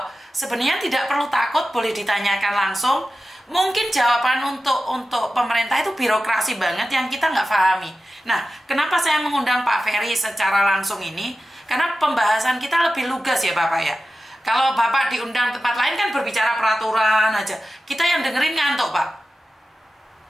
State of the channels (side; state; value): both; normal; correlation 0.93